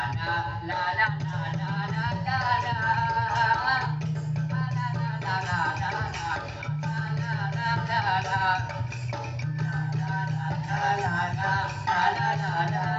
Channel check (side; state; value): both; identical; correlation 1.00